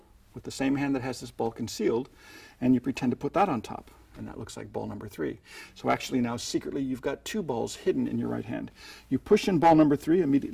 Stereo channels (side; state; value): both; identical; correlation 1.00